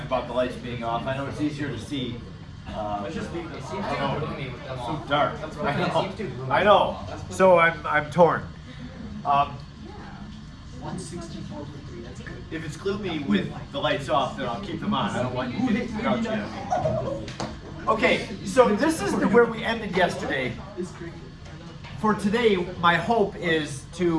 about the lights being off. I know it's easier to see. I don't know. It's so dark. I know. So I'm torn. 164 for 3, that's good. If it's gloomy with the lights off, then I'll keep them on. I don't want you getting grouchy on me. Okay, so this is where we ended yesterday. For today, my hope is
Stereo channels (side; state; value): both; identical; correlation 1.00